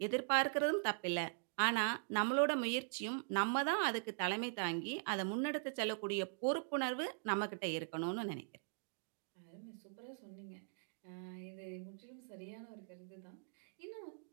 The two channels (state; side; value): silent; left; digital silence